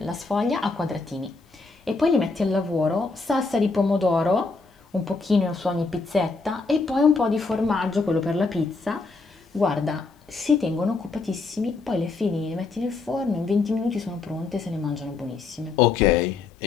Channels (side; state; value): right; quieter; 4.0 dB